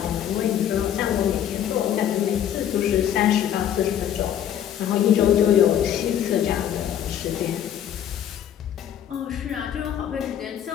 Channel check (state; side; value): quieter; right; 10.0 dB